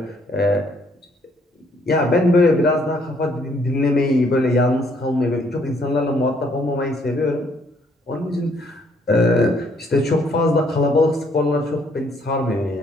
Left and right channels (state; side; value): normal; both; correlation 0.67